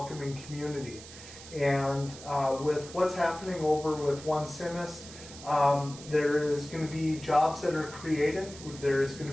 community. And with what's happening over with One Simis, there is going to be jobs that are created. There is going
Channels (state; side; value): noise; right; hiss, 15 dB below the sound